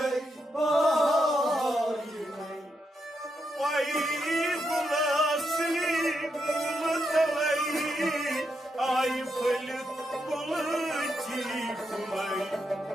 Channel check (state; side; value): normal; both; correlation 0.82